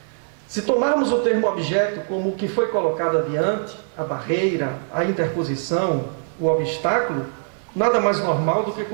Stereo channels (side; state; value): left; silent; 56 dB below the other